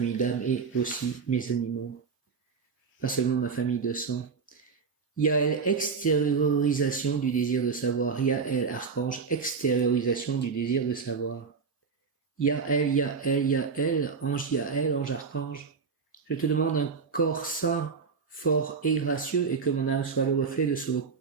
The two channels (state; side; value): quieter; left; 5.3 dB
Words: d'âme et aussi mes animaux. Pas seulement ma famille de sang. Yael, extériorisation du désir de savoir. Yael, archange, extériorisation du désir de savoir. Yael, Yael, Yael, ange archange. Je te demande un corps sain, fort et gracieux, et que mon âme soit le reflet de ce